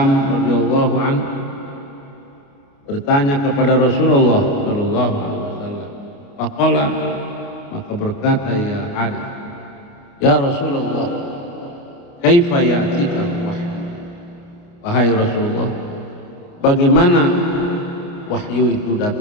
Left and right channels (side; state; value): right; late; 29 ms